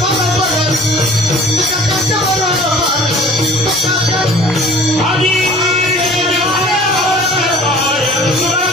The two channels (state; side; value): normal; both; correlation 0.48